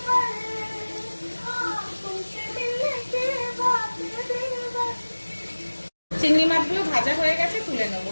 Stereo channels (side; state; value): both; inverted; correlation -1.00